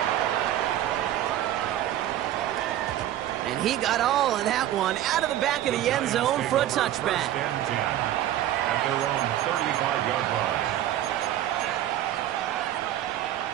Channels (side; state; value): left; quieter; 12.6 dB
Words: And he got all of that one out of the back of the end zone for a touchback. At their own 35-yard line.